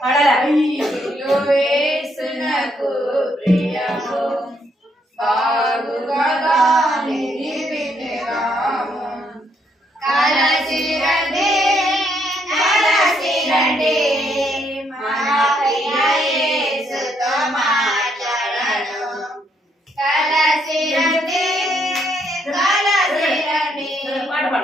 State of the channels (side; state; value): both; normal; correlation 0.73